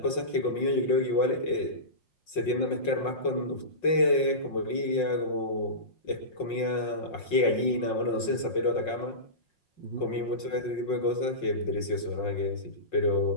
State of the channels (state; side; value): late; right; 5.6 ms